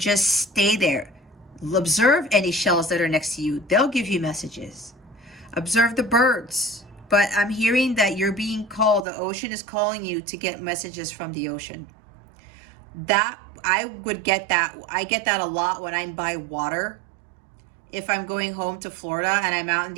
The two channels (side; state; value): left; drops out; at 9.1 s